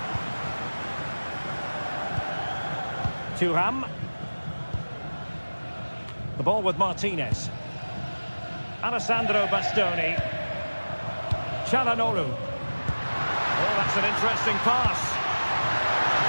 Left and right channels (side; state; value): both; inverted; correlation -1.00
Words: Thuram. The ball with Martinez. Alessandro Bastoni. Çalhanoğlu. Oh, that's an interesting pass.